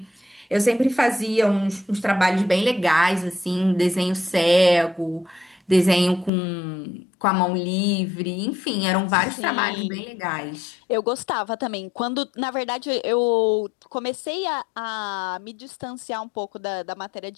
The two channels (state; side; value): drops out; right; at 6.3 s